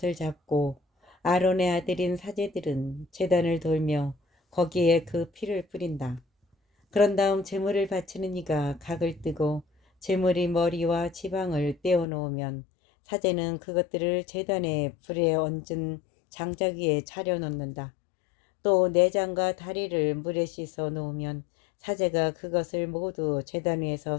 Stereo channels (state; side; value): drops out; right; at 12.1 s